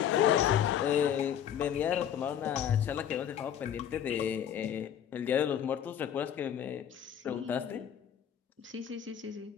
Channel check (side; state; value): right; quieter; 9.4 dB